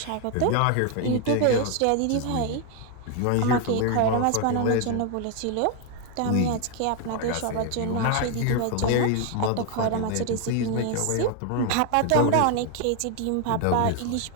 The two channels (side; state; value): both; different; correlation 0.01